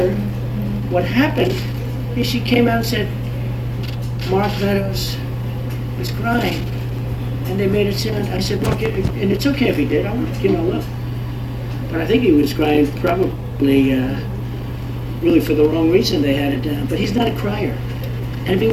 what happened is she came out and said, Mark Meadows was crying. And they made it sound, I said, Mark, and it's okay if he did, look. But I think he was crying probably really for the wrong reason. They had it down. But he's not a crier. And if he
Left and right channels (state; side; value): identical; both; correlation 1.00